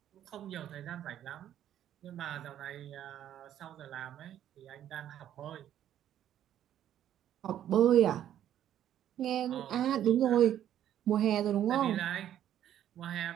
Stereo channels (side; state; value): left; quieter; 11.0 dB